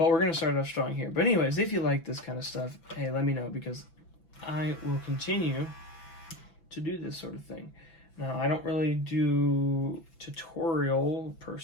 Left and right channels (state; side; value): late; right; 6.0 ms